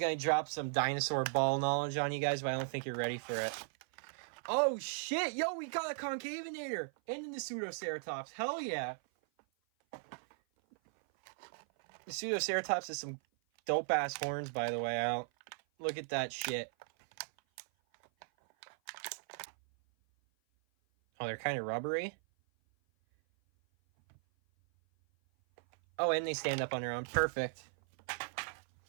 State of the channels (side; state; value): left; silent; 53 dB below the other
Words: drop some dinosaur ball knowledge on you guys, but I don't think you're ready for it. Oh shit! Yo, we got a Concavinator and the Pseudoceratops. Hell yeah! The Pseudoceratops has some dope ass horns, by the way. Look at that shit. Oh, they're kind of rubbery. Oh, and they stand up on their own. Perfect.